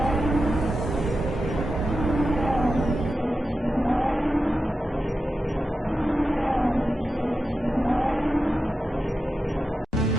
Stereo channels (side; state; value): both; normal; correlation 0.90